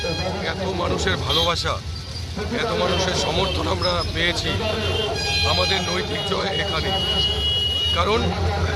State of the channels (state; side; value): identical; both; correlation 1.00